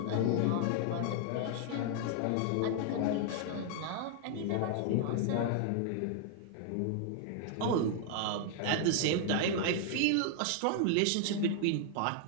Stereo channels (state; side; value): different; both; correlation 0.00